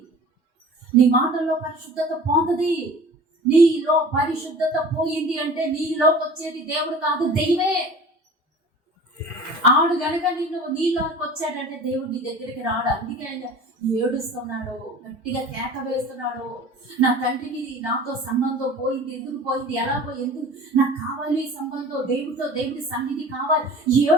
నీ మాటల్లో పరిశుద్ధత పోతుంది. నీలో పరిశుద్ధత పోయింది అంటే నీలోకి వచ్చేది దేవుడు కాదు, దెయ్యమే. ఆడు గనక నీలోకి వచ్చాడంటే దేవుడు నీ దగ్గరికి రాడు. అందుకే ఆయన ఏడుస్తున్నాడు, గట్టిగా కేక వేస్తున్నాడు. నా తండ్రికి నాతో సంబంధం పోయింది, ఎందుకు పోయింది, ఎలా పోయింది, ఎందుకు నాకు కావాలి సంబంధం, దేవుడి సన్నిధి కావాలి.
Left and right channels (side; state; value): both; normal; correlation 0.41